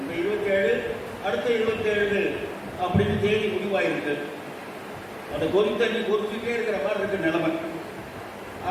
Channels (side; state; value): both; identical; correlation 1.00